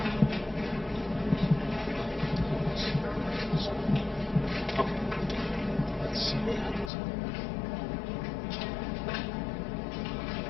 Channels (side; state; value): right; drops out; at 6.9 s